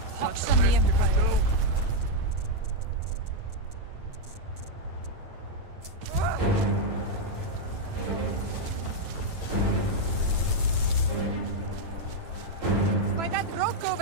Pox on the Empire. By that rock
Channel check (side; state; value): left; late; 9.1 ms